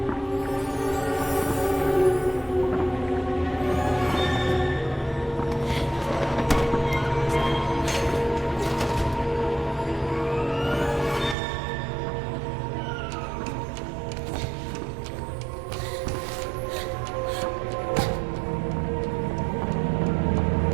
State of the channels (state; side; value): drops out; left; at 11.4 s